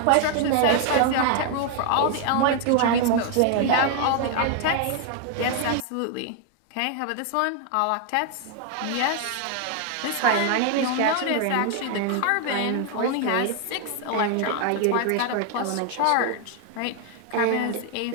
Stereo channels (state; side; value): different; both; correlation 0.00